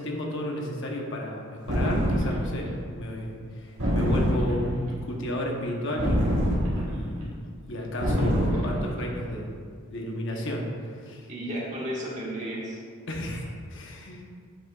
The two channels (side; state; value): both; normal; correlation 0.70